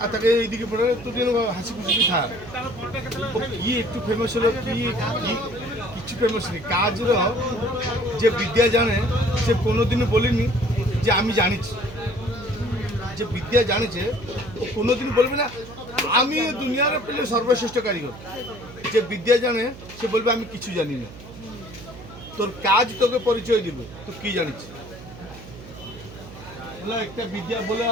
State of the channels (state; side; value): noise; right; hum, 16 dB below the sound